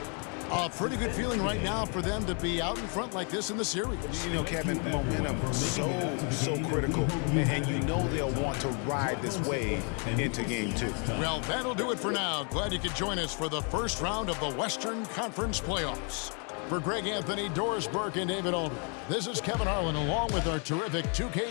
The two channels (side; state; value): right; quieter; 37.9 dB